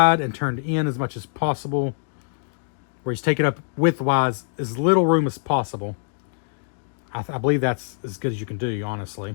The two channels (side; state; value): right; silent; digital silence